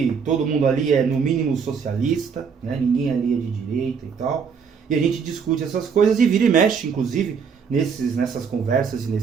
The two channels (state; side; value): quieter; left; 6.2 dB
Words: todo mundo ali é no mínimo socialista, né, ninguém ali é de direita e tal, e a gente discute essas coisas e vira e mexe, inclusive, nessas conversas e